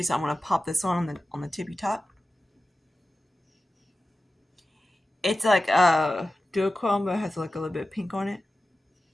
so I'm gonna pop this one on the tippy top. It's like a duochrome, but it has like a little bit of pink on it.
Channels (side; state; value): both; normal; correlation 0.94